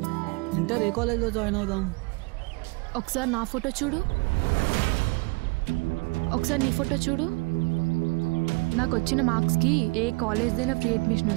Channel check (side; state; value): left; quieter; 28.4 dB